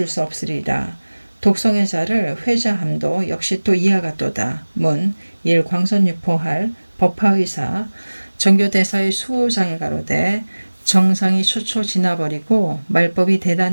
수 없으리라. 독성의 자를 회자함도 역시 또 이와 같도다. 문. 일 광선유포할 법화의사 정교대사의 수호장에 가로되 정상이 초초 지나버리고 말법이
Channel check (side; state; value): both; inverted; correlation -1.00